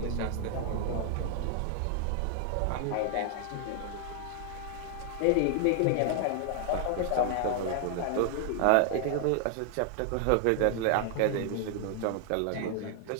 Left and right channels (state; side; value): different; both; correlation 0.00